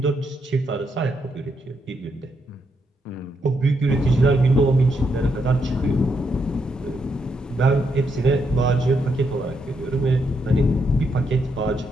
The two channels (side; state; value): both; normal; correlation 0.79